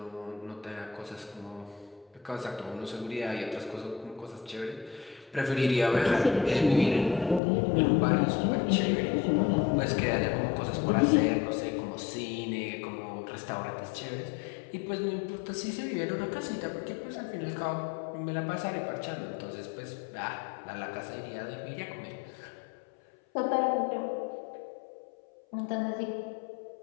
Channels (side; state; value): right; drops out; at 7.4 s